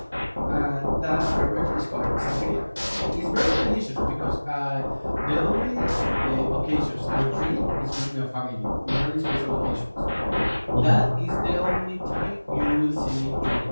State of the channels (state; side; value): inverted; both; correlation -1.00